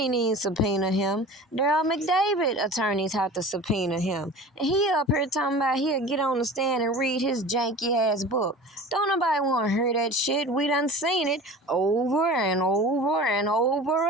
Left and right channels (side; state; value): both; normal; correlation 0.38